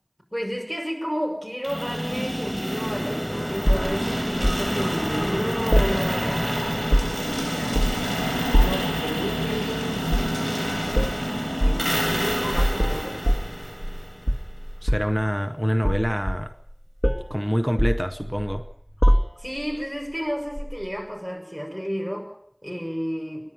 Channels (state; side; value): identical; both; correlation 1.00